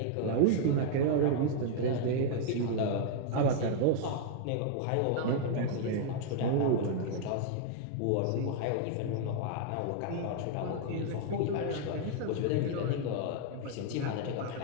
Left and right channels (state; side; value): different; both; correlation 0.00